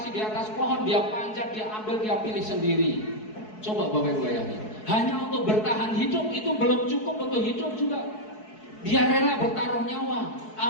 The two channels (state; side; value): late; right; 4.7 ms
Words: di atas pohon, dia panjat, dia ambil, dia pilih sendiri. Coba Bapak Ibu bayangin, hanya untuk bertahan hidup itu belum cukup untuk hidup juga. Dia rela bertaruh nyawa,